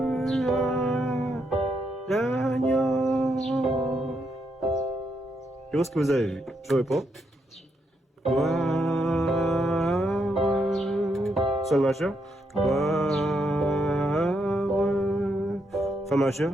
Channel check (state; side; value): normal; both; correlation 0.79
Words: à l'agneau. Je pense que vous avez vu. Je réponds. Gloire. Sol majeur. Gloire. Fa majeur.